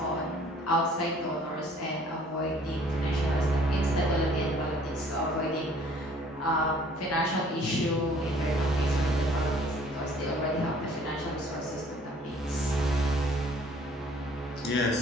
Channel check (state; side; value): normal; both; correlation 0.56